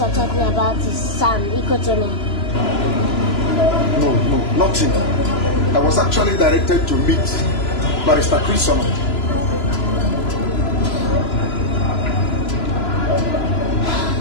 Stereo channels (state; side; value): late; right; 3.0 ms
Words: are talking about his son, eco-training. No, nothing. I was actually directed to meet Barrister Chris. So,